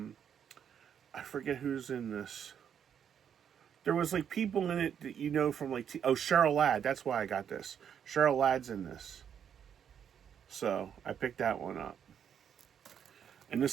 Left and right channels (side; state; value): left; quieter; 8.3 dB